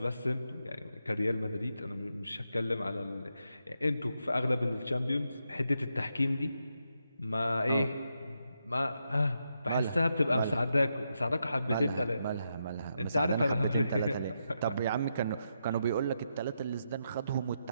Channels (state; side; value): inverted; both; correlation -0.83